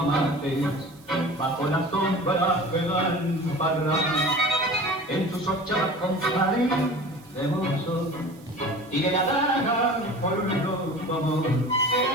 mates bajo la sombra que da el parral. En tus ochavas compadre de mozo tiré la daga por tu amor.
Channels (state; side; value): noise; right; hiss, 27 dB below the sound